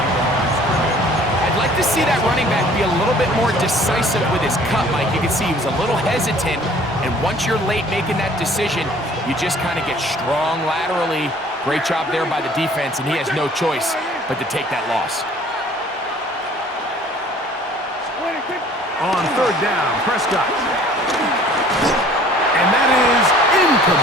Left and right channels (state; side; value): normal; both; correlation 0.53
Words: I'd like to see that running back be a little bit more decisive with his cut, Mike. You can see he was a little hesitant, and once you're late making that decision, you just kind of get strong laterally. Great job there by the defense, and he has no choice but to take that loss. On third down, Prescott. And that is